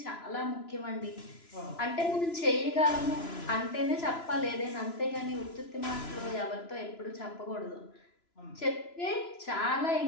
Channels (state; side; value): late; right; 2.9 ms